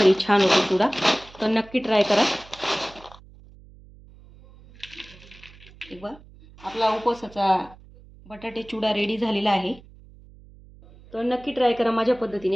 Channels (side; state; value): right; noise; hum, 23 dB below the sound